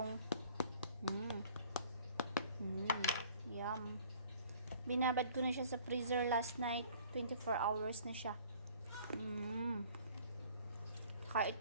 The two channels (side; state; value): both; inverted; correlation -0.53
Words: Yum. Binabad ko na siya sa freezer last night. 24 hours na siya. Kaya